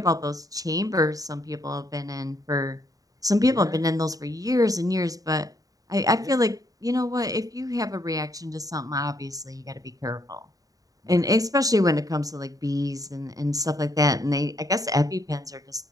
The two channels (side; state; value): left; late; 0.17 ms